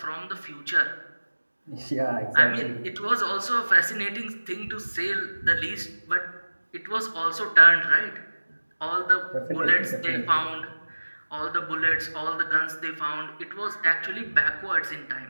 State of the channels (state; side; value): inverted; both; correlation -1.00